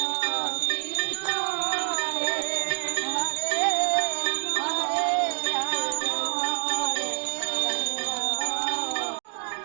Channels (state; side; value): silent; left; digital silence